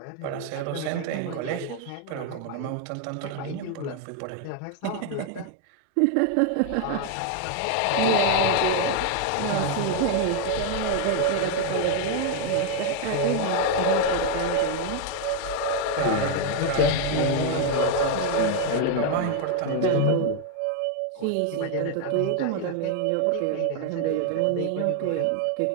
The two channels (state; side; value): different; both; correlation 0.00